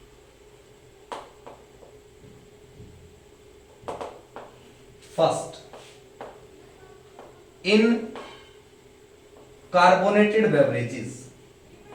First, in carbonated beverages.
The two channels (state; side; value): identical; both; correlation 1.00